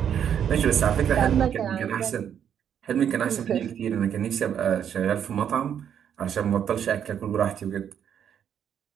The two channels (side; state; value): left; quieter; 8.8 dB